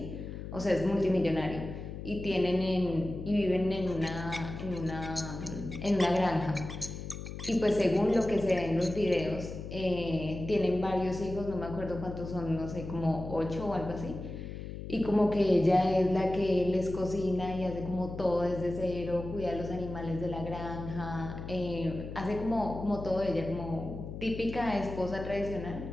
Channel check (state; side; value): noise; left; hum, 9 dB below the sound